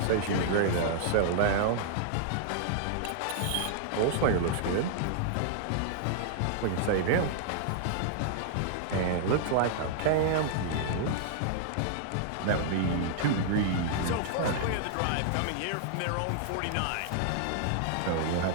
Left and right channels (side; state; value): both; different; correlation -0.01